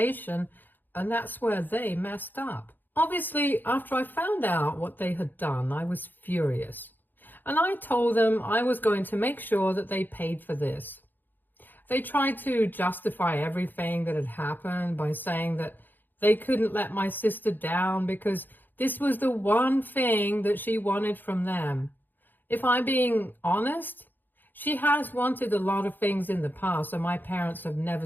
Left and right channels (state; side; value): late; right; 0.090 ms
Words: and that's where they messed up. Obviously, after I found out what they had done, I was furious. And I told them I was going to make sure that they paid for this. They tried to justify everything that had happened by saying that they couldn't let my sister down because this was the one thing that she wanted from them. If I'm being honest, she has wanted a lot of things in the past, and my parents have never